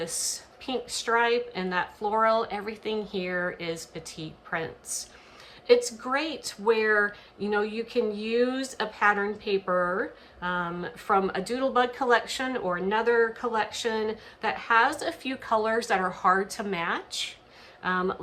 pink stripe and that floral, everything here is Petite prints. It's great where, you know, you can use a pattern paper from a Doodlebug collection or another collection that has a few colors that are hard to match.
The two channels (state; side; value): identical; both; correlation 1.00